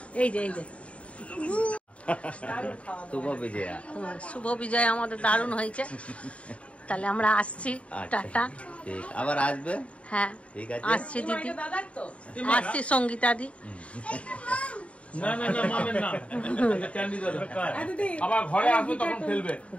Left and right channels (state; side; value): late; right; 0.063 ms